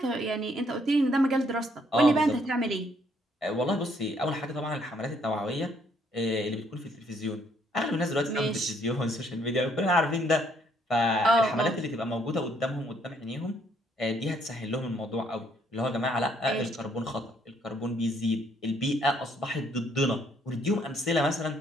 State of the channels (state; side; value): normal; both; correlation 0.68